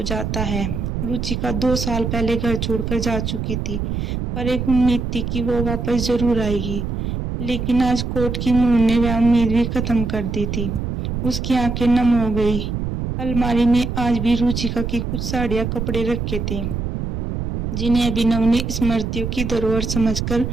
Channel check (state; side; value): noise; right; rumble, 3 dB below the sound